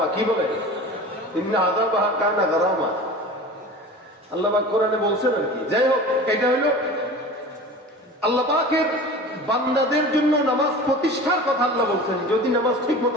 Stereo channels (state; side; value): normal; both; correlation 0.37